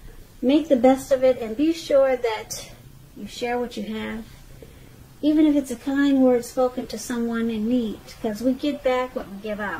Make the best of it and be sure that you share what you have. Even if it's a kind word spoken to someone in need, because we get back what we give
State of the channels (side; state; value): both; identical; correlation 1.00